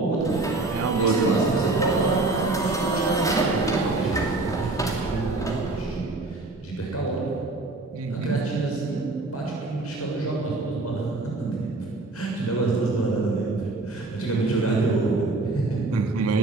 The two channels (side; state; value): left; quieter; 3.2 dB